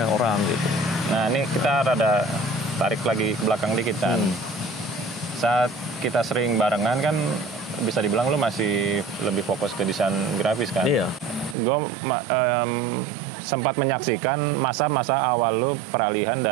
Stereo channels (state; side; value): drops out; left; at 11.6 s